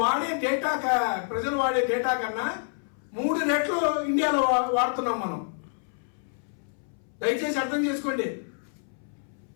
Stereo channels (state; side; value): silent; right; 60 dB below the other